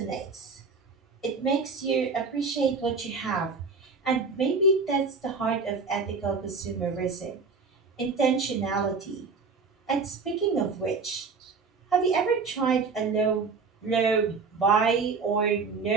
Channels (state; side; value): quieter; left; 4.6 dB